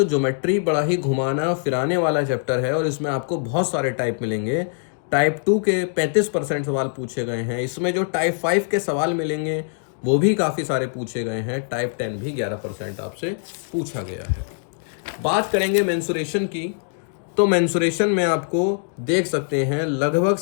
ज्योमेट्री बड़ा ही घुमाना फिराने वाला चैप्टर है और इसमें आपको बहुत सारे टाइप मिलेंगे। टाइप 2 के 35% सवाल पूछे गए हैं। इसमें जो टाइप 5 के सवाल मिलेंगे वो भी काफ़ी सारे पूछे गए हैं। टाइप 10 भी 11% आपसे पूछा गया है। बात करेंगे मेंसुरेशन की, तो मेंसुरेशन में आपको देख सकते हैं लगभग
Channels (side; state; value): right; silent; digital silence